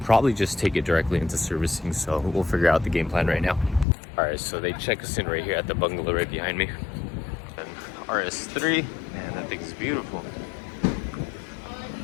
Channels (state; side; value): drops out; right; at 3.9 s